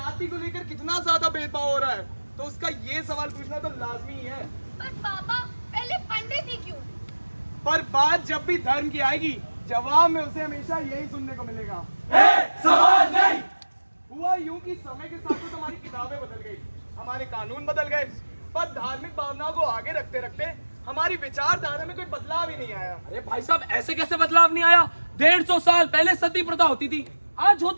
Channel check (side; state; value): both; inverted; correlation -1.00